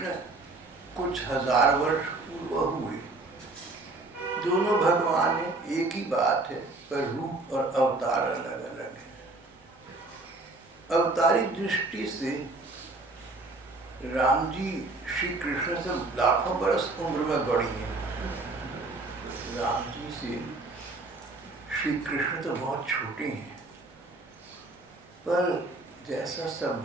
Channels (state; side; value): quieter; left; 3.1 dB